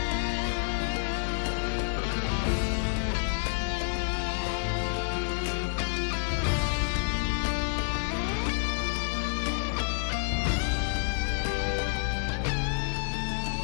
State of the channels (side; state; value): right; silent; digital silence